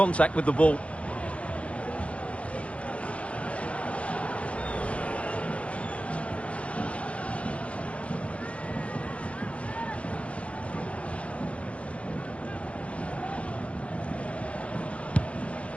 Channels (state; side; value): late; right; 0.062 ms